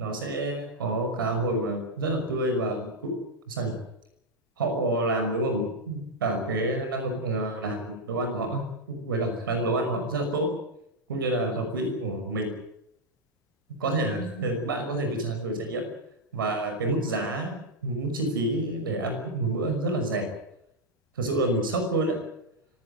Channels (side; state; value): both; normal; correlation -0.02